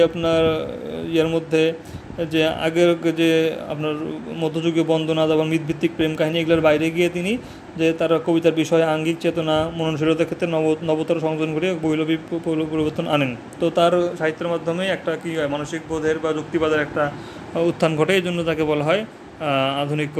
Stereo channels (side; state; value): both; identical; correlation 1.00